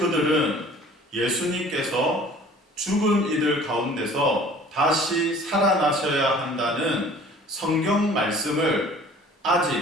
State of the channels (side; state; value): both; normal; correlation 0.49